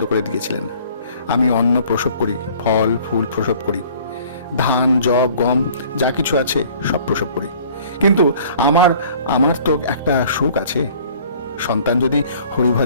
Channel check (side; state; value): both; inverted; correlation -0.52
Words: করে দিয়েছিলেন। আমি অন্ন প্রসব করি, ফল ফুল প্রসব করি, ধান জব গম যা কিছু আছে সব প্রসব করি। কিন্তু আমার আমার তো একটা সুখ আছে। সন্তান যদি হরি